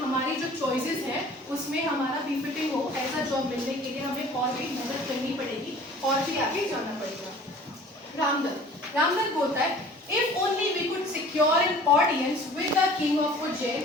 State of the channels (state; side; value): normal; both; correlation 0.47